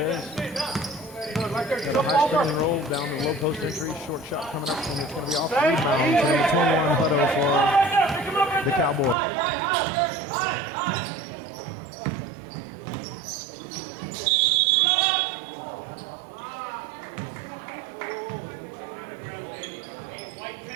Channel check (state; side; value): drops out; left; at 9.2 s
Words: Got a high screen and roll down the low post entry. Short shot coming up, and it's going to be off the rebound. So number 21 Hutto for the Cowboys. And 6:33 to go in the first half. Ball coming back across now to Hutto. Hutto kicks it over to Majors. Majors back up to 12 Higgins. But we had a call. We're going to have a foul.